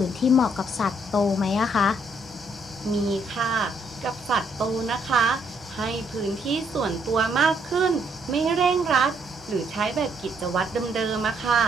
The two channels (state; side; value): normal; both; correlation 0.71